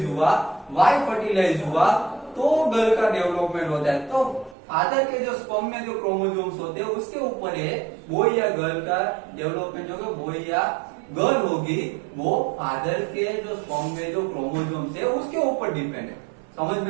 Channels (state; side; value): drops out; left; at 4.5 s